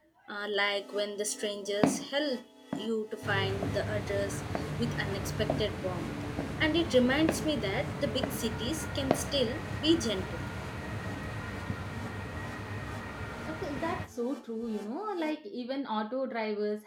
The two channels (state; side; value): identical; both; correlation 1.00